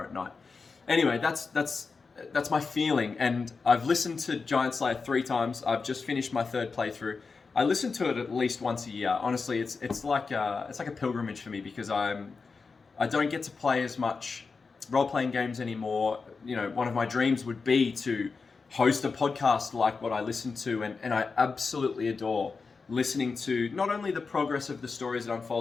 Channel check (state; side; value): quieter; right; 4.7 dB